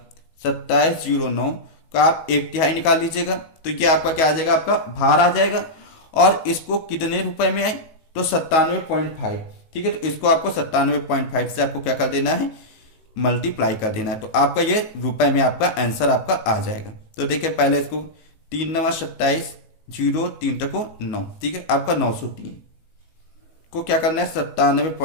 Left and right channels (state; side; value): late; right; 18 ms